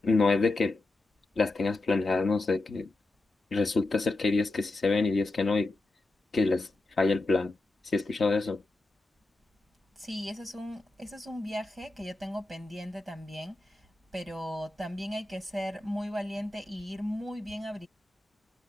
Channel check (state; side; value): quieter; right; 3.0 dB